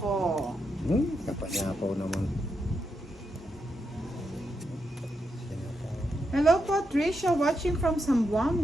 Kapanyapaw naman. Hello po, Trisha, watching from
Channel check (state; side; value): normal; both; correlation 0.84